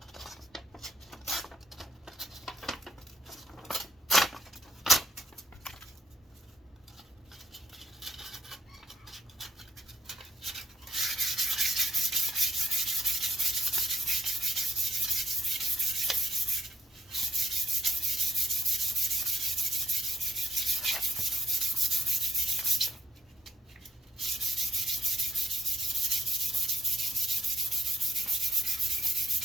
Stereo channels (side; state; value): both; normal; correlation 0.69